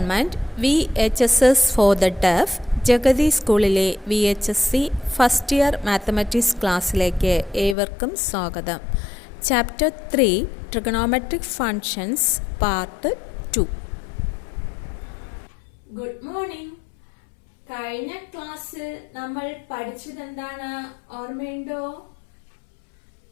VHSS for the deaf Jagathy സ്കൂളിലെ VHSC ഫസ്റ്റ് ഇയർ മാത്തമാറ്റിക്സ് ക്ലാസ്സിലേക്ക് ഏവർക്കും സ്വാഗതം. Chapter 3 trigonometric functions part 2. Good morning. കഴിഞ്ഞ ക്ലാസ്സിൽ നമ്മൾ പഠിച്ചത് എന്താണ് ഓർമ്മയുണ്ടോ?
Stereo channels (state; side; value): drops out; right; at 7.8 s